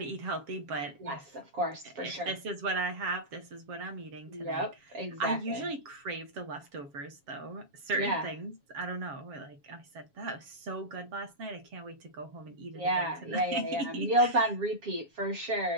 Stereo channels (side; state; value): left; late; 7.2 ms